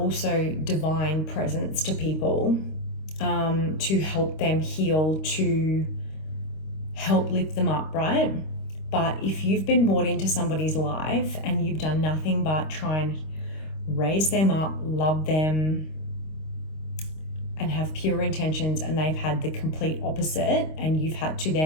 divine presence to people, to help them heal, to help lift them up, right? But if you've been brought into somebody's life and you've done nothing but try and raise them up, love them, and have pure intentions, and they've had the complete opposite, and you've had to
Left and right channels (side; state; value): right; late; 26 ms